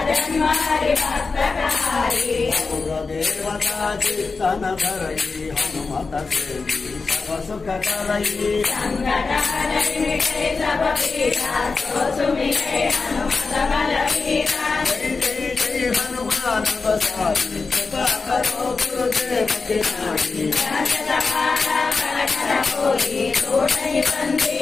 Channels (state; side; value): quieter; right; 4.3 dB